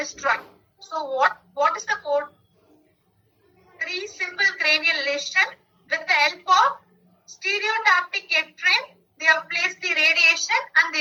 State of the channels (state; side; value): identical; both; correlation 1.00